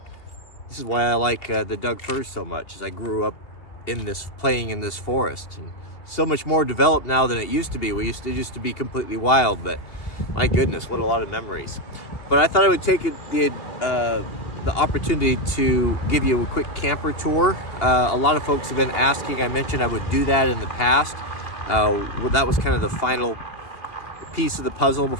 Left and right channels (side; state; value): right; late; 2.8 ms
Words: This is why I like the Doug firs so much, as I grew up playing in this forest. And so much more developed now than it used to be. It used to be completely wild, but my goodness, what a lot of memories. But I thought I would take the opportunity to give you a quick camper tour. A lot of folks have been asking. I mentioned I would do that in the past. That was kind of the final piece of the puzzle